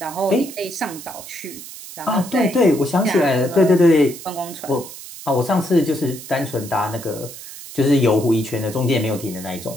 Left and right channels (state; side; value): noise; right; hiss, 14 dB below the sound